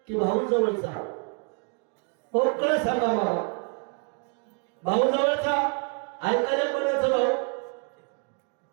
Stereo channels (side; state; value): left; quieter; 37.5 dB